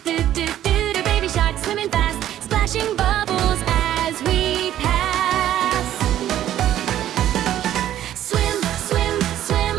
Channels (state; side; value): quieter; left; 12.0 dB